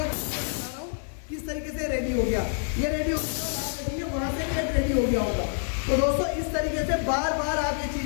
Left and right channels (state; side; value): silent; right; digital silence